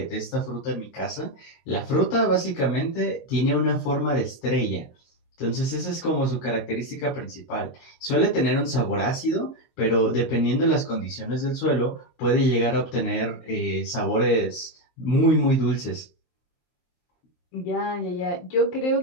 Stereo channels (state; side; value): late; right; 23 ms